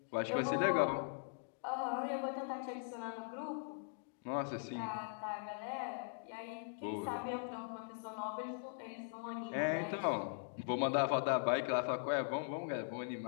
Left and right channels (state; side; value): silent; right; digital silence